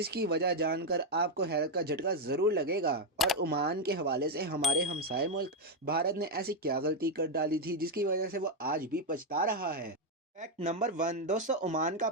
वजह जानकर आपको हैरत का झटका ज़रूर लगेगा। और ओमान के हवाले से हमारे हमसाए मुल्क भारत ने ऐसी क्या गलती कर डाली थी जिसकी वजह से वो आज भी पछता रहा है। फैक्ट नंबर 1 दोस्तों, ओमान का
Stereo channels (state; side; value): normal; both; correlation 0.04